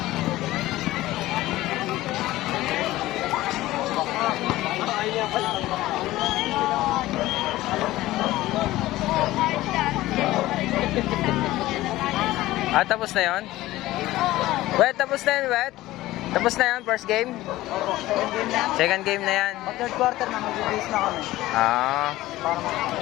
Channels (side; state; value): right; quieter; 16.7 dB